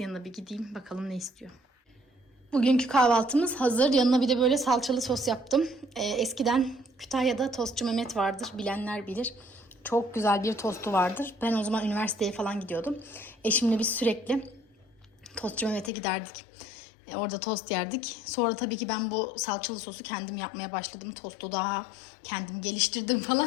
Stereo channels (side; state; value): right; drops out; at 15.9 s